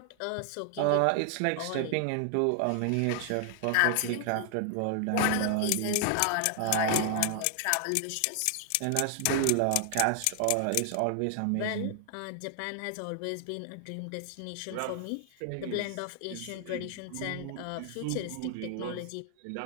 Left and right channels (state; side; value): different; both; correlation 0.00